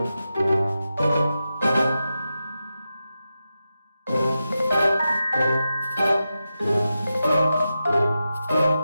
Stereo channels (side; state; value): both; inverted; correlation -0.90